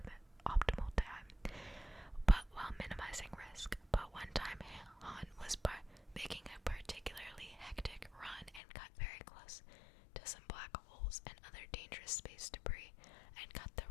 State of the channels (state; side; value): drops out; right; at 8.6 s